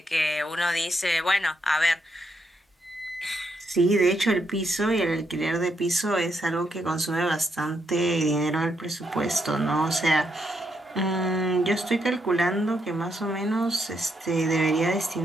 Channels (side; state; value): both; normal; correlation 0.79